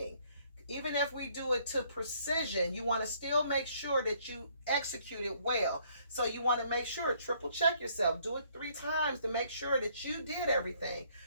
Even if we do it to precision, you want to still make sure that you execute it well. So you want to make sure, triple check yourself. Do it 3 times to make sure that you did everything.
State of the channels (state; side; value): inverted; both; correlation -0.65